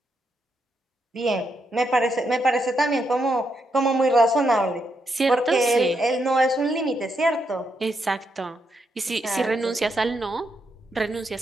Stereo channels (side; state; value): both; normal; correlation 0.81